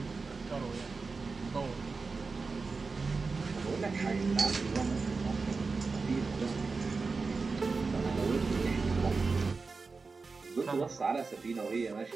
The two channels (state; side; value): quieter; left; 4.3 dB